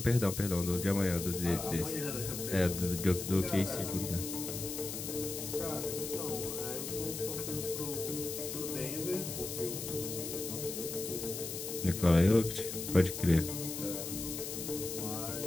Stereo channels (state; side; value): noise; left; hiss, 6 dB below the sound